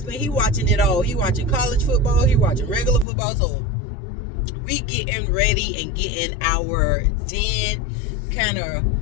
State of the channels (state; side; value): drops out; right; at 3.1 s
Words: he watching it all. He watching college football, he watching regular football. So we getting ready and getting our den kind of,